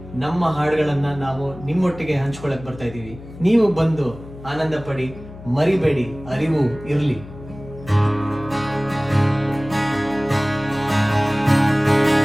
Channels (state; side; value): noise; left; hum, 16 dB below the sound